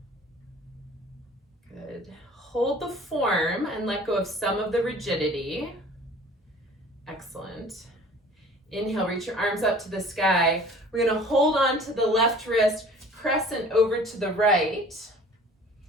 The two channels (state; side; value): normal; both; correlation 0.48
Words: Good. Hold the form and let go of some of the rigidity. Excellent. Inhale, reach your arms up to the sky. We're going to hold on to the left wrist, crescent over to the right.